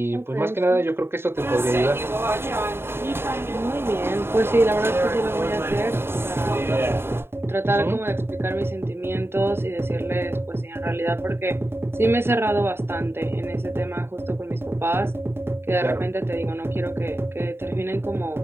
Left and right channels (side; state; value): left; late; 0.11 ms